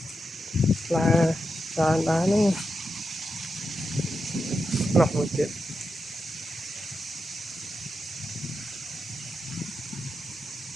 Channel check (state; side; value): normal; both; correlation 0.87